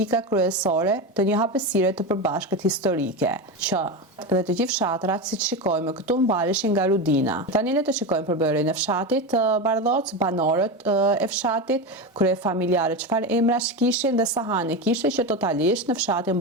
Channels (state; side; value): normal; both; correlation 0.19